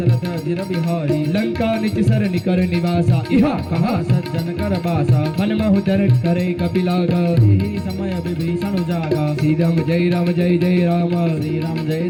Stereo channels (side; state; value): both; identical; correlation 1.00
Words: जिर बिहारी લંકા નિચ સર નિકર નિવાસા ઇહા કહા सज्जन कर बासा મન મહુદર કરે કપિલાગ यही समय विभीषण जागा શ્રી રામ જય રામ જય જય રામ श्री राम